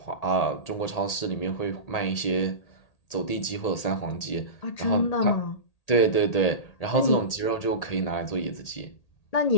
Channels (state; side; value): late; right; 1.8 ms